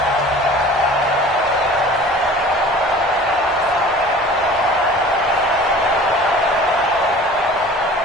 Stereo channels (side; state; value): both; normal; correlation 0.44